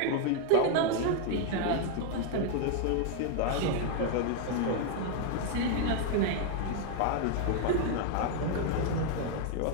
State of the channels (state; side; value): different; both; correlation 0.00